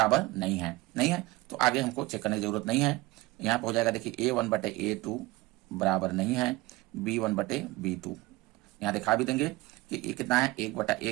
नहीं है, तो आगे हमको चेक करने की जरूरत नहीं है। यहाँ पे हो जाएगा देखिए a1 बटे a2 बराबर नहीं है b1 बटे b2, यहाँ दिखा भी देंगे कि ये कितना है 1 बटा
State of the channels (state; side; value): quieter; left; 20.8 dB